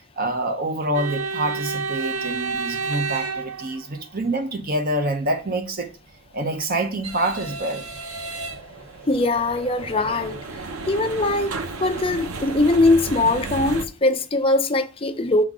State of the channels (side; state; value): both; normal; correlation 0.25